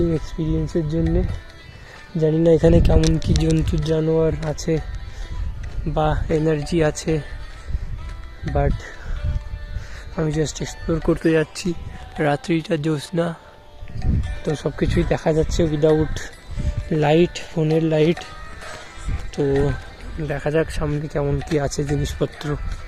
এক্সপিরিয়েন্সের জন্যে। জানি না এখানে কেমন কি জন্তু জানোয়ার আছে বা এনার্জি আছে, বাট আমি জাস্ট এক্সপ্লোর করতে যাচ্ছি। রাত্রিটা জ্যোৎস্না, তো সব কিছুই দেখা যাচ্ছে উইদাউট লাইট, ফোনের লাইট। তো দেখা যাক সামনে কেমন কি আছে জিনিসপত্র।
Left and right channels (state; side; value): identical; both; correlation 1.00